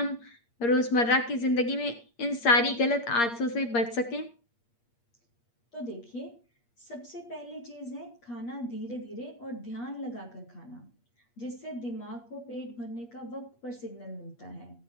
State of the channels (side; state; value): right; late; 8.5 ms